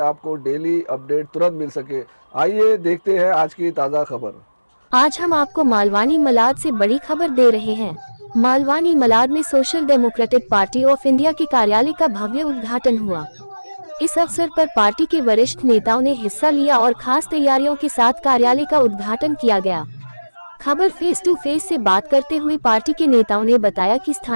आपको डेली अपडेट तुरंत मिल सके। आइए देखते हैं आज की ताज़ा खबर। आज हम आपको मालवानी मलाड से बड़ी खबर दे रहे हैं। मालवानी मलाड में social democratic party of India के कार्यालय का भव्य उद्घाटन हुआ। इस अवसर पर पार्टी के वरिष्ठ नेताओं ने हिस्सा लिया और खास तैयारियों के साथ कार्यालय का उद्घाटन किया गया। खबर फेस टू फेस से बात करते हुए पार्टी के नेताओं ने बताया कि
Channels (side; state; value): both; inverted; correlation -1.00